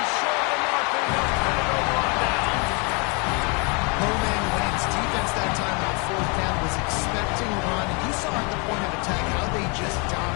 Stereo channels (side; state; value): right; quieter; 32.2 dB